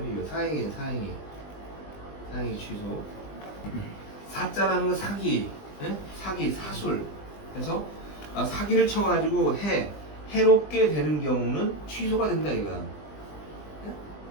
이거 사행이에요. 사행이 취소. 사자라는 건 사기, 예? 사기, 사술. 그래서 사기를 쳐가지고 해롭게 되는 경우는 취소가 된다 이거야. 예?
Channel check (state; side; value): late; right; 20 ms